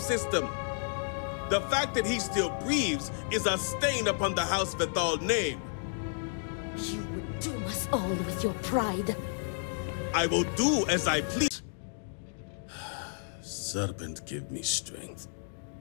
system. The fact that he still breathes is a stain upon the House Vethal name. You would doom us all with your pride. I will do as I please. Serpent, give me strength.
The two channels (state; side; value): silent; right; digital silence